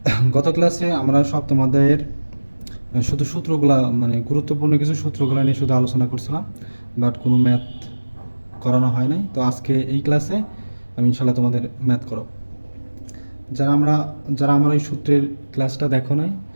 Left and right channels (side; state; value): both; inverted; correlation -1.00